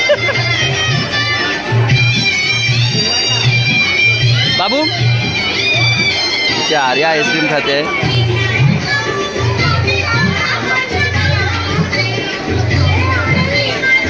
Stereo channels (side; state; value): both; identical; correlation 1.00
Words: बाबू इथे आर्या आईस्क्रीम खाते.